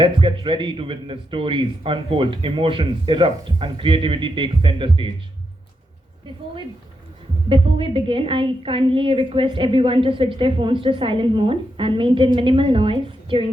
get ready to witness stories unfold, emotions erupt, and creativity takes center stage. Before we before we begin, I kindly request everyone to switch their phones to silent mode and maintain minimal noise during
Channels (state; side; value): normal; both; correlation 0.84